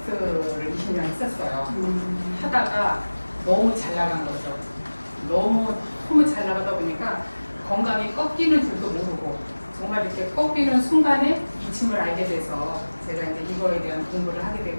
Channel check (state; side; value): inverted; both; correlation -1.00